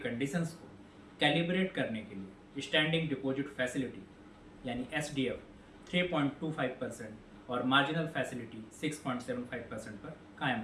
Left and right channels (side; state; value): both; identical; correlation 1.00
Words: को कैलिब्रेट करने के लिए स्टैंडिंग डिपॉजिट फैसिलिटी यानी एसडीएफ 3.25% और मार्जिनल फैसिलिटी 6.75% पर कायम